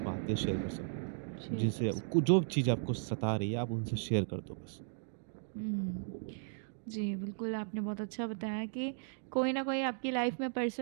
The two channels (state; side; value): silent; left; digital silence